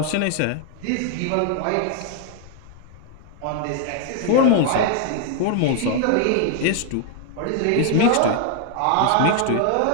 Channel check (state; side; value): different; both; correlation 0.00